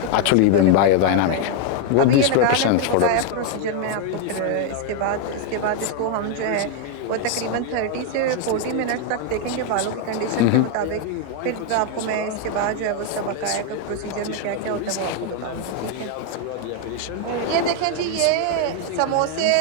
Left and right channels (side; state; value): both; different; correlation 0.01